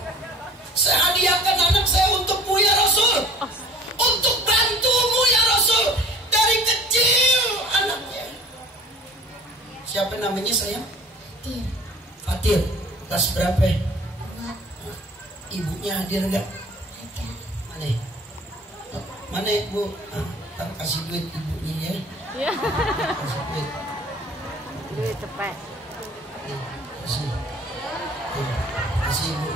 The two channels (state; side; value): normal; both; correlation 0.47